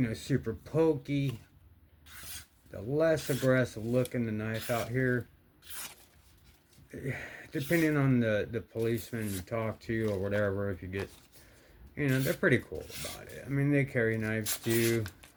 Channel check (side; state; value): both; identical; correlation 1.00